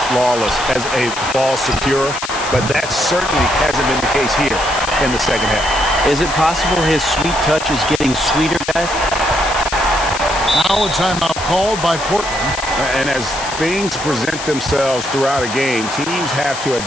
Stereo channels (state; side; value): noise; left; hiss, 9 dB below the sound